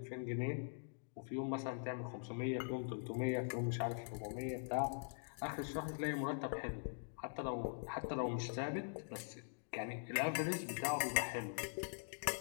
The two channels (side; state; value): right; silent; digital silence